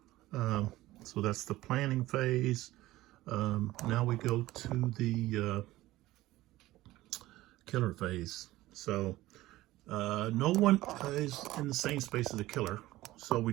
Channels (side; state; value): left; quieter; 17.0 dB